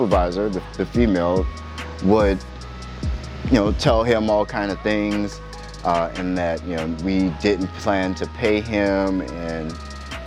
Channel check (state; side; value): identical; both; correlation 1.00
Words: the female, would tell him all kind of things, and that we didn't plan to pay him, and